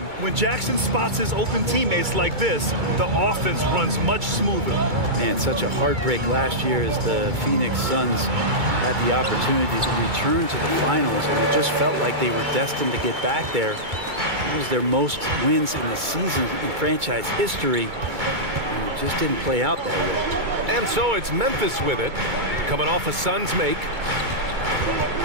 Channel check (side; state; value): left; late; 2.2 ms